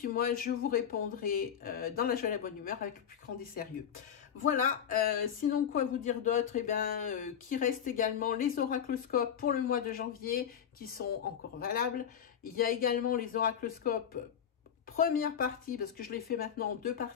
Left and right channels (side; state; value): right; quieter; 8.5 dB